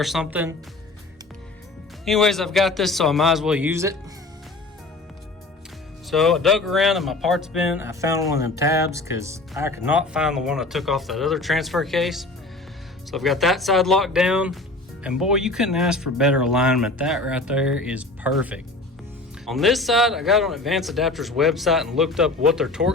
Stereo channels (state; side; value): quieter; right; 3.0 dB